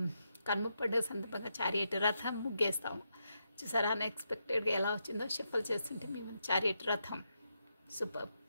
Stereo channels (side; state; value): both; inverted; correlation -0.83